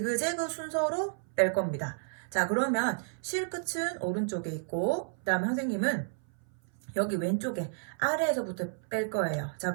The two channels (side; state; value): left; silent; 57 dB below the other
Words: 순서로 뺄 겁니다. 자, 그러면 실 끝은 오른쪽에 있고, 그 다음에 선생님은 여기 왼쪽에 아래에서부터 뺄 거예요. 자,